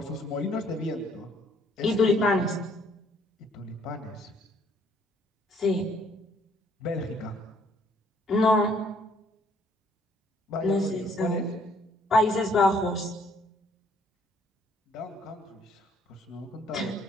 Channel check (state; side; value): normal; both; correlation 0.64